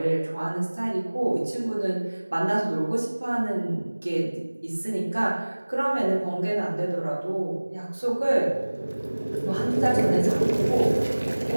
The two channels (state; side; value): inverted; both; correlation -1.00